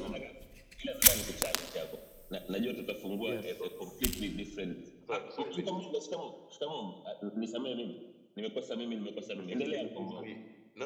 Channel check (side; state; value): both; identical; correlation 1.00